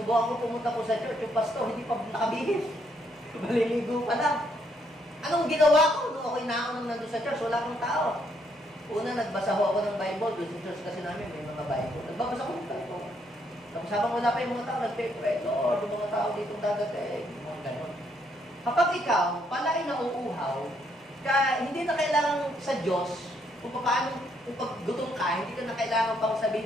ko pumunta po sa church, yung pastor, hindi pa nakabihis. Maliligo pa lang. Anong ginawa ko nung ako'y naunang nandun sa church? Wala akong tao. Una, nagbasa ho ako ng Bible. Doon sa church kasi namin, may mga Bible. Nagbabasa ko ng Bible. Tapos habang wala pa yung mga tao, nagpe-pray, Lord, yung mga tao dito dadating, yung mga ganon. Kapag ikaw, pala ay nauuhaw, hindi na kailangan sa Diyos, kung paano, kung pag gutom ka, hindi ka na kailangan pang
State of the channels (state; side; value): normal; both; correlation 0.72